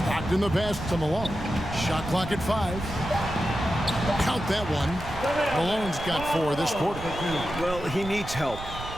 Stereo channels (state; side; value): noise; right; rumble, 11 dB below the sound